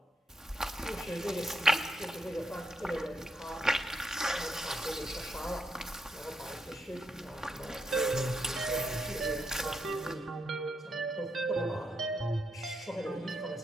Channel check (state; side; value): normal; both; correlation 0.81